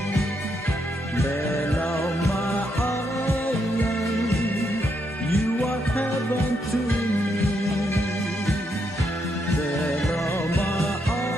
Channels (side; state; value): both; normal; correlation 0.79